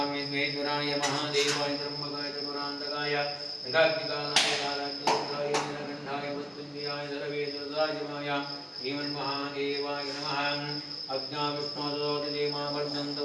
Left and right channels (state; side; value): identical; both; correlation 1.00